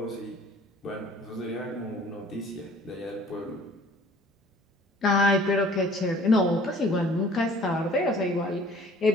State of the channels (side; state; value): both; normal; correlation 0.52